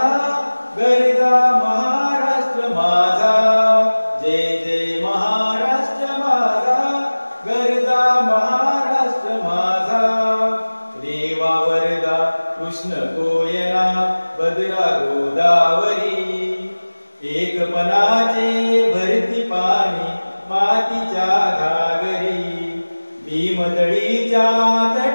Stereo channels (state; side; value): inverted; both; correlation -1.00